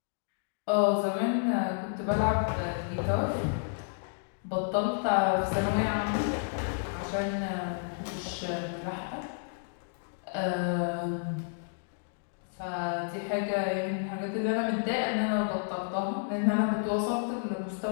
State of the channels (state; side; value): silent; right; digital silence